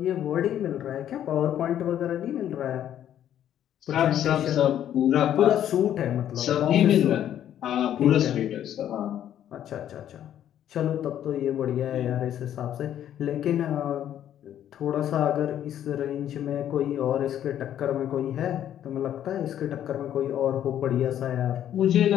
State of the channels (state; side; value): quieter; right; 10.8 dB